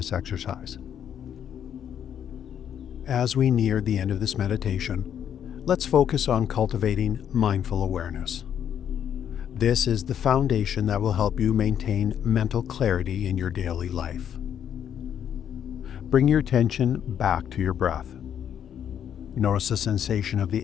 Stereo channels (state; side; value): quieter; right; 9.2 dB